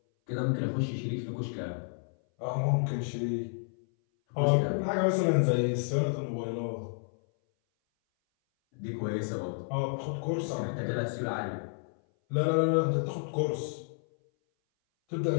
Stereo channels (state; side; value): silent; right; 57 dB below the other